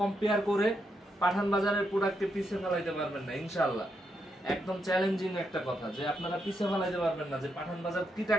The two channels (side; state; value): both; normal; correlation 0.81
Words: কম্পেয়ার করে পাঠান বাজারের প্রোডাক্টকে পিছে ফেলাইতে পারবেন না ইনশাআল্লাহ। একদম চ্যালেঞ্জিং একটা কথা যে আপনারা পিছে ফেলাইতে পারবেন না যে পাঠান বাজার কি